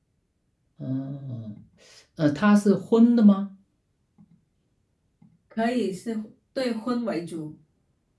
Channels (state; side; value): identical; both; correlation 1.00